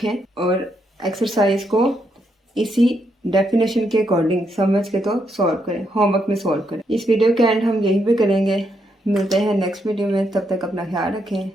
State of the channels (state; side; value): normal; both; correlation 0.78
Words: और एक्सरसाइज को इसी डेफिनेशन के अकॉर्डिंग समझ के तो सॉल्व करें, होमवर्क में सॉल्व करें। इस वीडियो के एंड हम यहीं पे करेंगे। मिलते हैं नेक्स्ट वीडियो में, तब तक अपना ख्याल रखें।